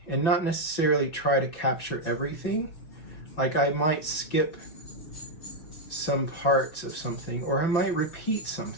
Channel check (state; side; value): late; right; 6.0 ms